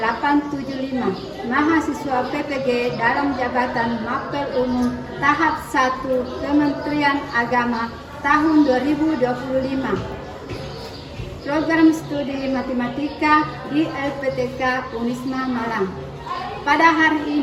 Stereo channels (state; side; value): identical; both; correlation 1.00